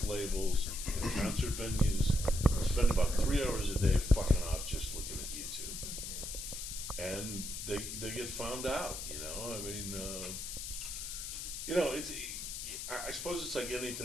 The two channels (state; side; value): noise; left; hiss, 6 dB below the sound